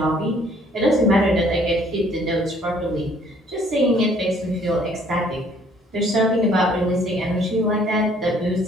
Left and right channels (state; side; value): normal; both; correlation 0.60